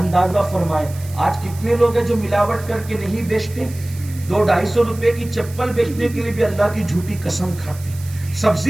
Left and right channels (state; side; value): noise; right; hiss, 19 dB below the sound